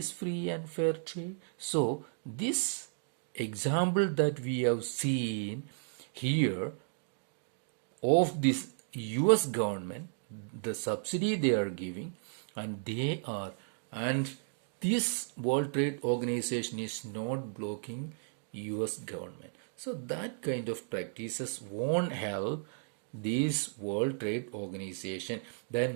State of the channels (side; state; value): left; silent; digital silence